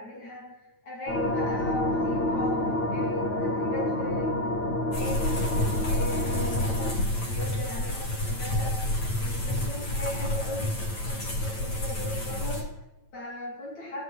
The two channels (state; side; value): late; right; 9.0 ms